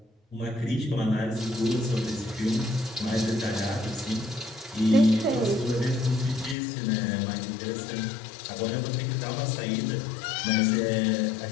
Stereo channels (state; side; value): drops out; right; at 6.6 s